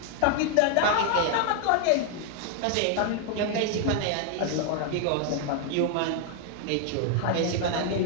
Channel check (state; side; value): different; both; correlation 0.00